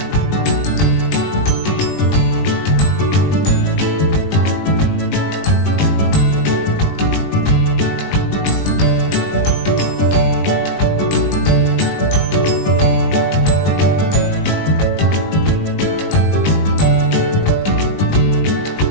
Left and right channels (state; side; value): late; right; 20 ms